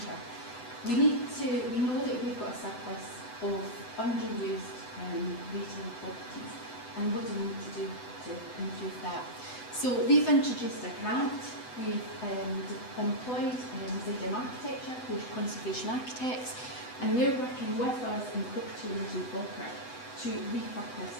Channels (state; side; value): late; right; 8.0 ms